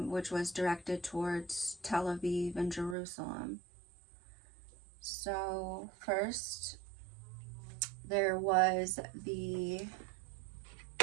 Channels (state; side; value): drops out; left; at 3.0 s